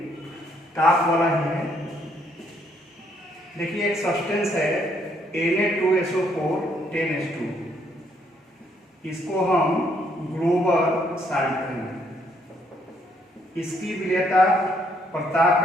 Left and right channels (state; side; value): normal; both; correlation 0.70